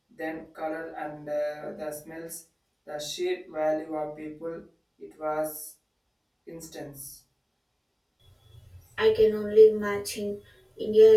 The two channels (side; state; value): both; identical; correlation 1.00